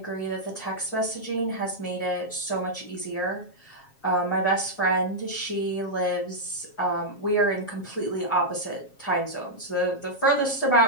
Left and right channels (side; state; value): right; late; 7.3 ms